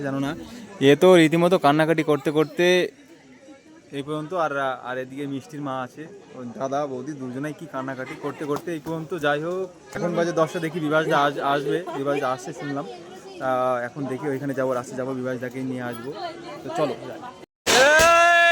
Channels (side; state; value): both; identical; correlation 1.00